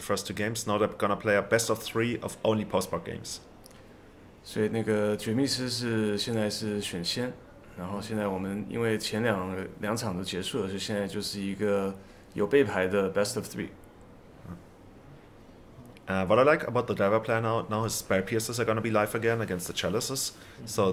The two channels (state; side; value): identical; both; correlation 1.00